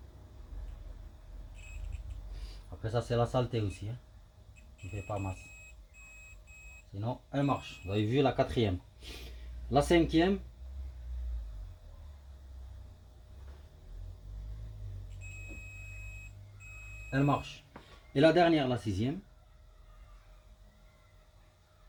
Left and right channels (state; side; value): identical; both; correlation 1.00